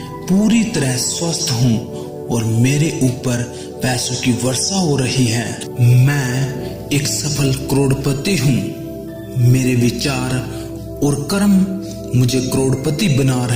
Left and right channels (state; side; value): identical; both; correlation 1.00